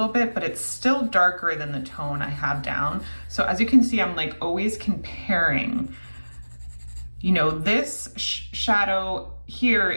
bit, but it's still darker than the tone I have down. So as you can see, I'm like always comparing, you know, this shadow here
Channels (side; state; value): both; inverted; correlation -1.00